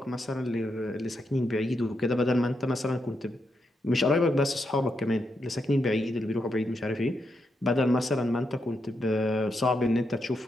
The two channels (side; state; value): both; normal; correlation 0.82